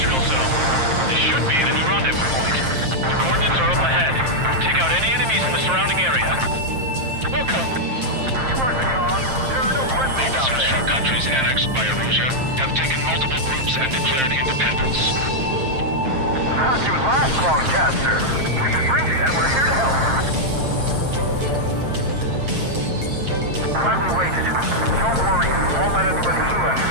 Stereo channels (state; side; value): late; left; 7.5 ms